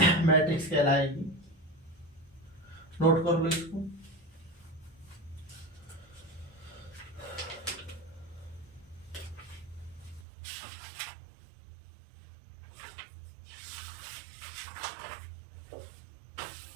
कहलाएगी। नोट कर लो इसको।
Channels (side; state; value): left; drops out; at 10.2 s